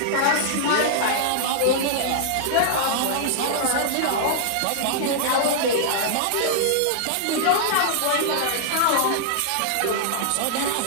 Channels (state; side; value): different; both; correlation -0.01